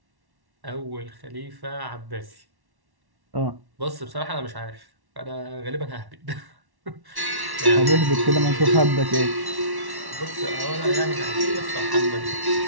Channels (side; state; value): left; late; 1.1 ms